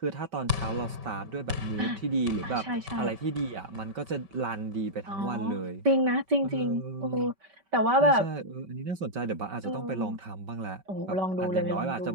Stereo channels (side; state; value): left; late; 5.2 ms